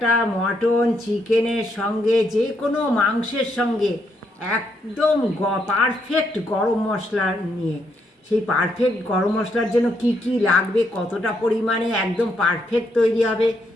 মটন চিকেনের সঙ্গে যে কোনো মাংসের সঙ্গে একদম পারফেক্ট গরম মশলা নিয়ে। সেই পারফেক্ট গরম মশলার জন্য কি কি লাগবে, কতটা পরিমাণে একদম পারফেক্ট তৈরি হবে,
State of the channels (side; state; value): both; normal; correlation 0.76